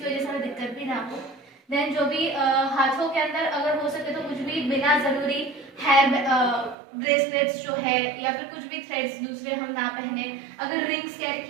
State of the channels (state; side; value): drops out; left; at 6.8 s